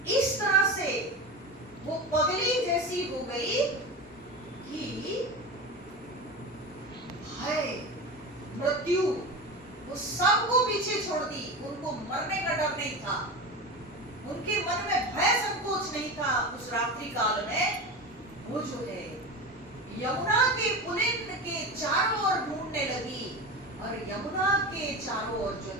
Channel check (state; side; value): normal; both; correlation 0.26